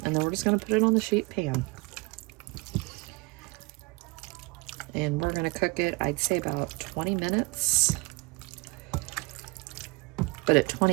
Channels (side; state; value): left; quieter; 26.0 dB